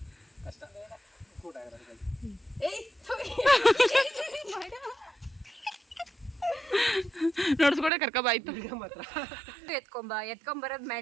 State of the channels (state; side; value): drops out; left; at 7.9 s